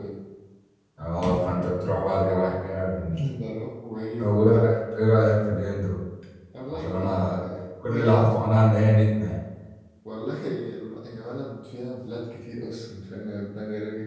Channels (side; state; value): both; identical; correlation 1.00